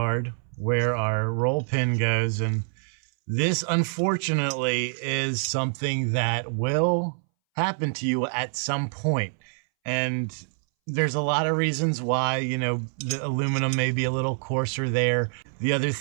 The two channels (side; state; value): left; silent; 61 dB below the other